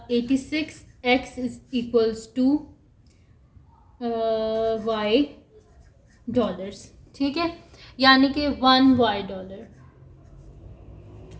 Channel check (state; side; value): identical; both; correlation 1.00